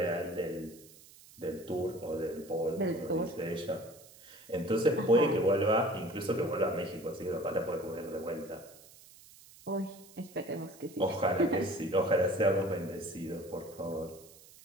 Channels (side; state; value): right; noise; hiss, 22 dB below the sound